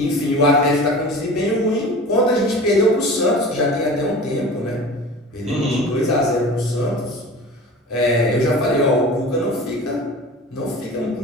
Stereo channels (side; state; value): both; normal; correlation 0.37